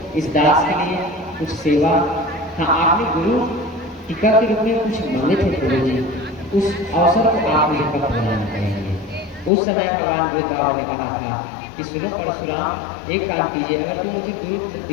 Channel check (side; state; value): right; drops out; at 9.5 s